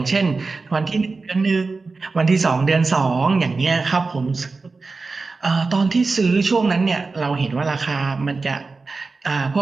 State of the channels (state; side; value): quieter; left; 4.0 dB